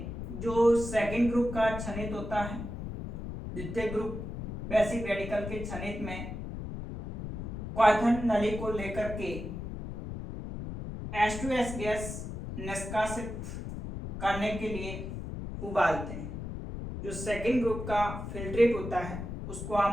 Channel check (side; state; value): left; noise; rumble, 7 dB below the sound